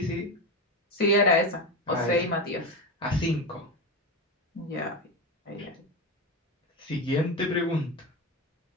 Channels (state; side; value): normal; both; correlation 0.18